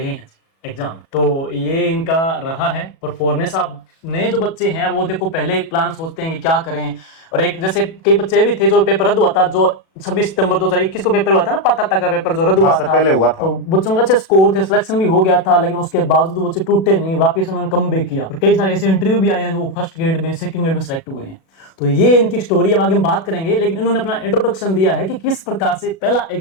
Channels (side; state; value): right; late; 37 ms